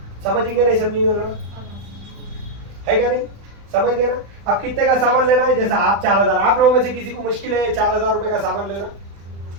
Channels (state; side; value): late; left; 35 ms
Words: समझेंगे नहीं समझेंगे ना? है क्या नहीं? समझ गए ना? अब कितने का सामान लेना है? जैसा आप 4000, आप लोगों में से किसी को मुश्किल है 4000 रुपए का सामान लेना?